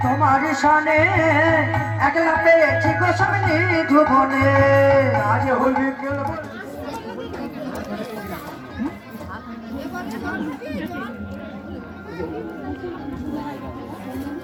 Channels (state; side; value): identical; both; correlation 1.00